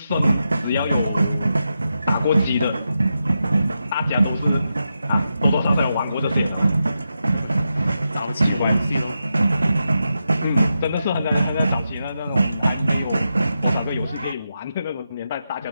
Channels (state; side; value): inverted; both; correlation -0.87